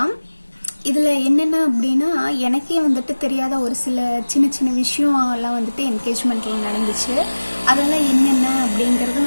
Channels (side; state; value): both; inverted; correlation -1.00